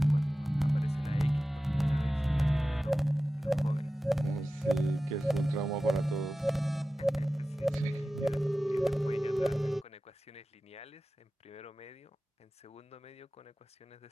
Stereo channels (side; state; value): both; normal; correlation 0.95